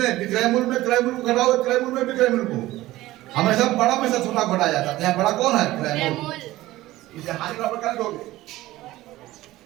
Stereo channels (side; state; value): left; quieter; 16.9 dB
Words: विक्रय मूल्य में क्रय मूल्य को घटाओ, क्रय मूल्य में विक्रय मूल्य को। हमेशा बड़ा में से छोटा घटाया जाता है, यहाँ बड़ा कौन है, क्रय मूल्य। इसे हानि बराबर कर दोगे,